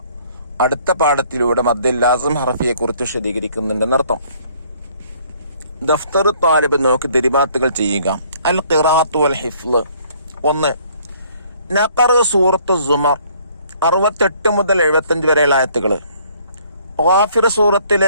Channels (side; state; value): both; inverted; correlation -0.61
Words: അടുത്ത പാഠത്തിലൂടെ മദ്ദുൽ ലാസിം ഹർഫിയെ കുറിച്ച് വിശദീകരിക്കുന്നുണ്ടെന്നർത്ഥം. ദഫ്തറു താലിബ് നോക്കി ദിരിബാത്തുകൾ ചെയ്യുക. അൽ ഖിറാഅത്തു വൽ ഹിഫ്ള്. 1. നഖറ സൂറത്തു സുമർ 68 മുതൽ 75 വരെയുള്ള ആയത്തുകൾ. ഗാഫിർ